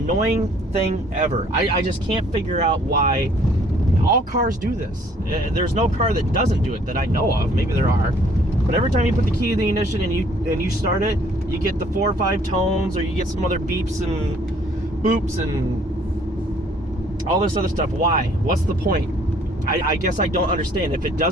thing ever. I just can't figure out why. All cars do this. There's no car that doesn't do it that I know of. Maybe there are. But every time you put the key in the ignition and you start it, you get the 4 or 5 tones, or you get some other beeps and boops and all this other stuff. Why? What's the point? I guess I don't understand. If it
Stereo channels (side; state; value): both; normal; correlation 0.60